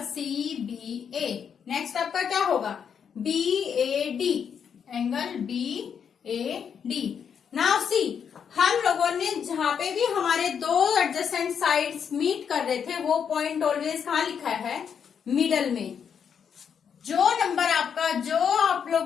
C B A. Next आपका क्या होगा B A D, angle B A D. Now see, हम लोगों ने जहां पे भी हमारे 2 एडजेसेंट साइड्स मीट कर रहे थे, वो पॉइंट ऑलवेज कहाँ लिखा है, मिडल में। जो नंबर आपका, जो आप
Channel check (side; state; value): right; quieter; 7.4 dB